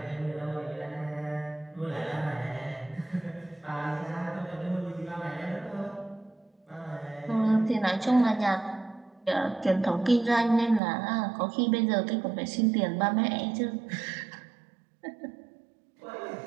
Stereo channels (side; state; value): left; drops out; at 10.8 s